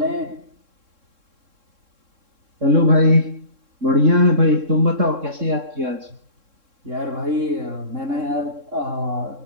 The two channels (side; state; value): left; late; 3.7 ms